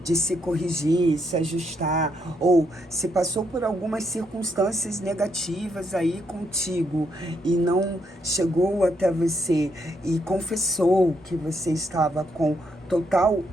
de se corrigir, se ajustar, ou se passou por algumas circunstâncias negativas aí contigo e não chegou até você e confessou que você estava com total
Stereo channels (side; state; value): both; normal; correlation 0.77